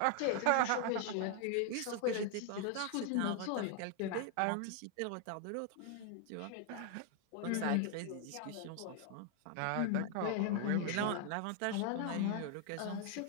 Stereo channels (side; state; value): both; different; correlation 0.00